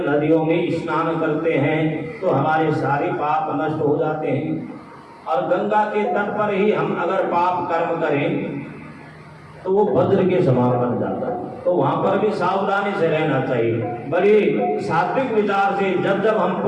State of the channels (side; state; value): both; identical; correlation 1.00